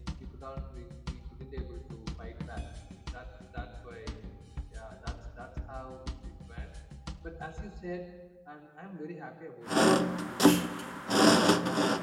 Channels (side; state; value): both; identical; correlation 1.00